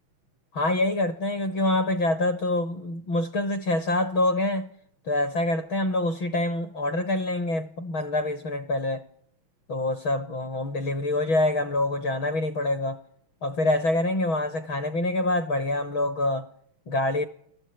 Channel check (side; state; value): right; late; 6.2 ms